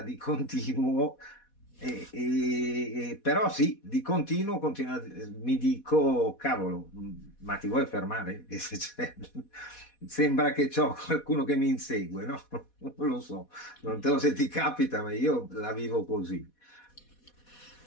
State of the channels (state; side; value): late; right; 4.1 ms